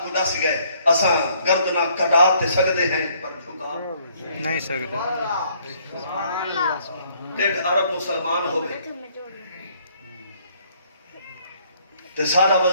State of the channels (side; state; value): both; inverted; correlation -0.64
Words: کو دس گئے اساں گردنا کٹاتے سکدے ہیں پر جھکا نہیں سکتے. 1.5 ارب مسلمان ہوئے تے سارا